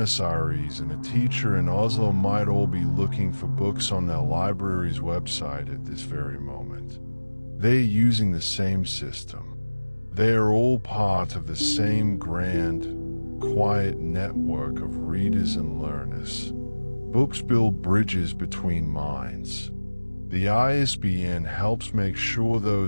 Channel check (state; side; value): inverted; both; correlation -1.00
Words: Aires and a teacher in Oslo might all be looking for books on their library's website at this very moment. They're using the same system. They are all part of the same grand, quiet network of readers and learners. Books build bridges between minds. The ISBN helps make sure